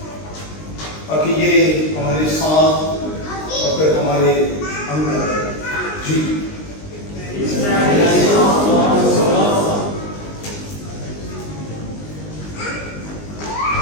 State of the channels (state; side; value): late; right; 19 ms